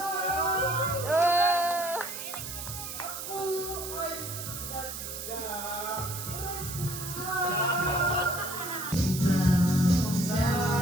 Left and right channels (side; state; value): right; noise; hiss, 8 dB below the sound